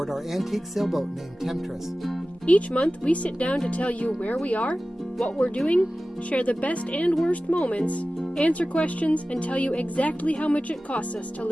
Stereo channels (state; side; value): normal; both; correlation 0.96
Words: our antique sailboat named Temptress. Each month, we sit down to tell you where we are, what we're doing, share the best and worst moments, answer questions, and tell you exactly how much it costs us to